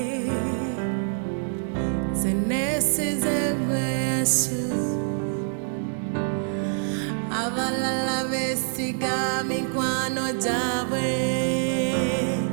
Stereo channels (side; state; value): left; silent; 61 dB below the other